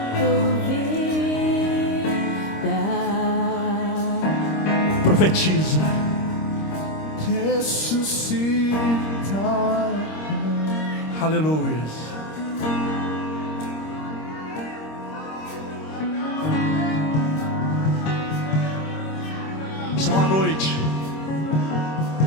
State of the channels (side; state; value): right; late; 26 ms